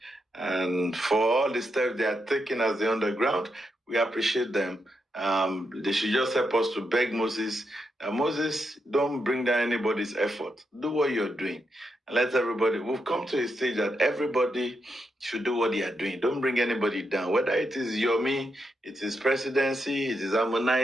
for all the steps they are taking as the underground, we appreciate them. They should just help us to beg Moses. Moses, don't bring down anybody's effort. Do what you're doing. And let everybody, we've come to a stage that everybody should do what they are doing. Don't bring anybody down. Whether it is Yomi, it is presidency, it is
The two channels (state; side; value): normal; both; correlation 0.83